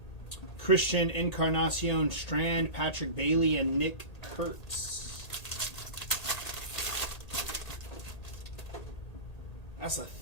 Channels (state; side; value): late; right; 1.8 ms